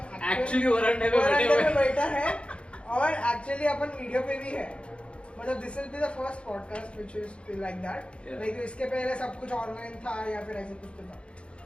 एक्चुअली वरांडे में बैठा है और एक्चुअली अपन वीडियो पे भी है। मतलब this will be the first podcast which is like that. Like इसके पहले सब कुछ ऑनलाइन था या फिर ऐसे कुछ तो था,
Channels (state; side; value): late; right; 0.058 ms